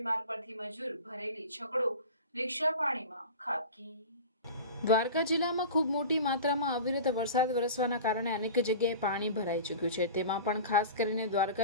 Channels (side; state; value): both; inverted; correlation -0.35